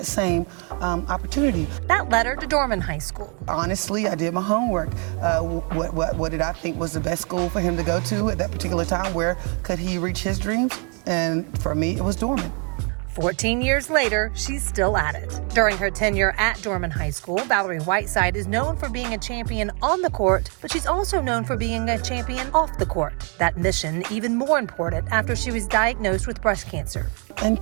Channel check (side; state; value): left; quieter; 37.7 dB